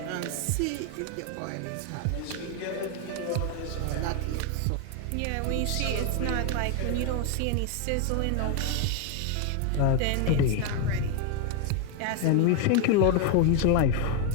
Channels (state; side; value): different; both; correlation 0.01